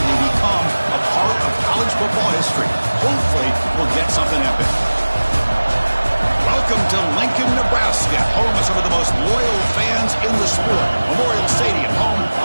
they become a part of college football history. Hopefully, we'll get something epic. Welcome to Lincoln, Nebraska, home of some of the most loyal fans in the sport. Memorial Stadium, home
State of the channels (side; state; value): both; inverted; correlation -1.00